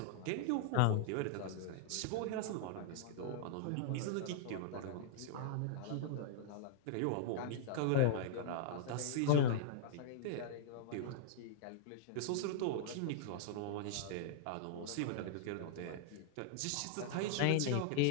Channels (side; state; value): both; different; correlation -0.01